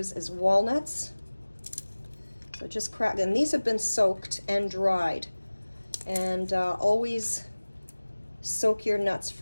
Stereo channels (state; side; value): inverted; both; correlation -1.00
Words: is walnuts. So just crack, and these have been soaked and dried. And always soak your nuts